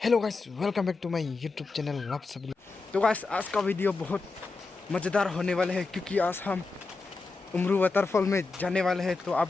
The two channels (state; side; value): quieter; right; 3.8 dB